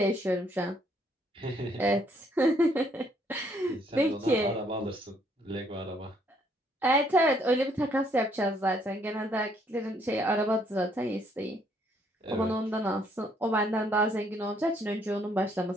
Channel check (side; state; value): both; normal; correlation 0.68